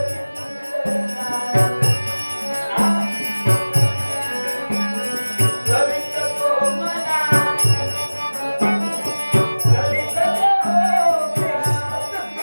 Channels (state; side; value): inverted; both; correlation -1.00